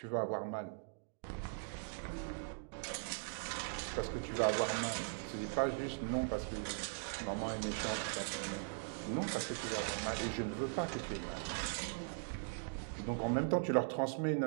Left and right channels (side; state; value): left; silent; digital silence